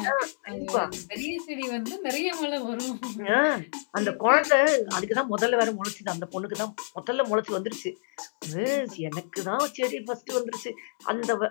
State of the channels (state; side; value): silent; right; digital silence